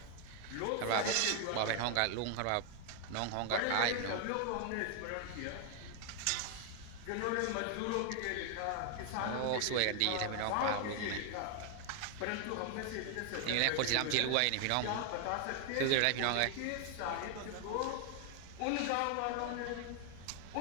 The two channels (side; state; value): both; different; correlation 0.00